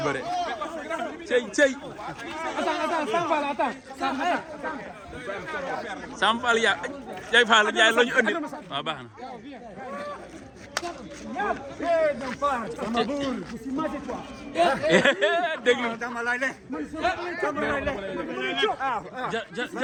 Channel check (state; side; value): identical; both; correlation 1.00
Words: bëri. Cey. Samfal ya Jay Fall Ndiaye la ñu andi waaw baax na. déglu